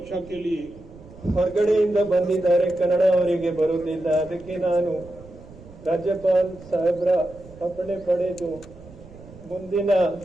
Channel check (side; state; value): right; noise; rumble, 20 dB below the sound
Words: के लिए ಹೊರಗಡೆಯಿಂದ ಬಂದಿದ್ದಾರೆ, ಕನ್ನಡ ಅವರಿಗೆ ಬರುತ್ತಿಲ್ಲ, ಅದಕ್ಕೆ ನಾನು ರಾಜ್ಯಪಾಲ್ ಸಾಹೇಬ್ರ ಅಪ್ಪಣೆ ಪಡೆದು ಮುಂದಿನ